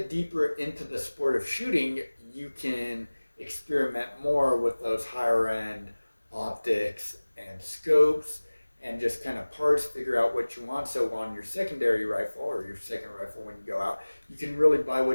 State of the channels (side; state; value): both; inverted; correlation -1.00